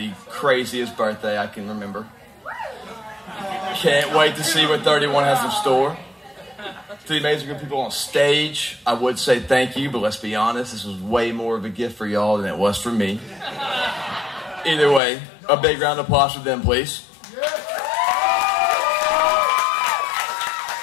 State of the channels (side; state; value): right; drops out; at 15.0 s